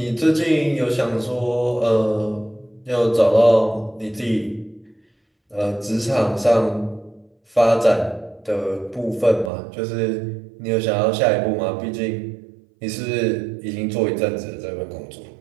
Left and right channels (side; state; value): left; drops out; at 9.5 s